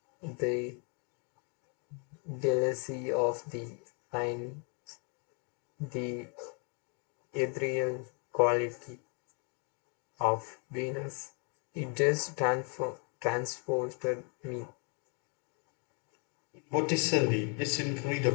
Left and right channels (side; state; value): right; quieter; 37.7 dB